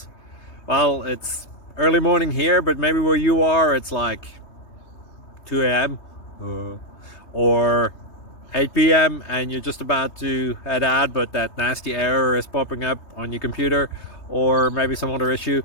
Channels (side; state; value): right; late; 3.2 ms